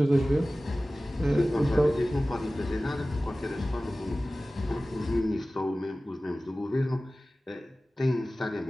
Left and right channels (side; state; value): both; normal; correlation 0.97